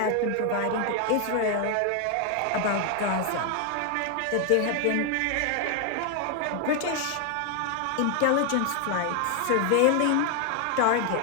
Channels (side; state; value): both; different; correlation 0.01